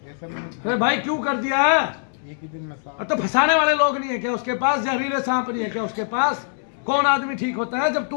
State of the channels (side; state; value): right; silent; 64 dB below the other